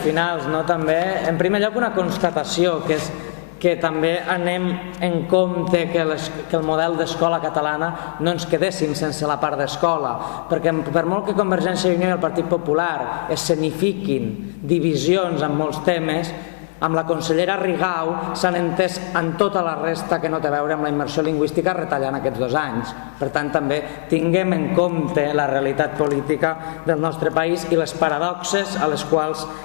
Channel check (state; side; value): silent; right; 65 dB below the other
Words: també, en primer lloc una constatació, que és que també anem en compte que el model d'escola catalana no ens quedéssim sense la part d'escola, perquè per molt que Convergència i Unió i el Partit Popular escenifiquin divisions en molts temes, amb la consellera Rigau s'han entès en tota la resta que no té a veure amb la immersió lingüística retallant aquests 2 anys. Per tant, també tinguem en compte la realitat política del nostre país i les paradoxes a les quals